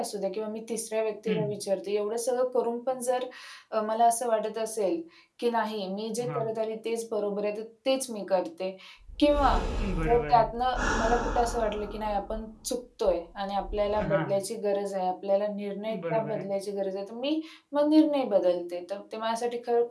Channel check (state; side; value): identical; both; correlation 1.00